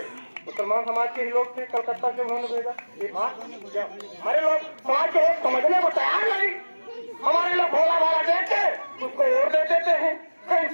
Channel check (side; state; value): both; inverted; correlation -1.00